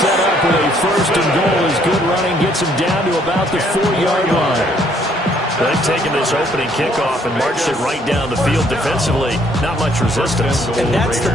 up with a 1st and goal as good running gets him down to about the 4-yard line. They've taken this opening kickoff and marched it right down the field defensively. Not much resistance. And that's the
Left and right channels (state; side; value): normal; both; correlation 0.65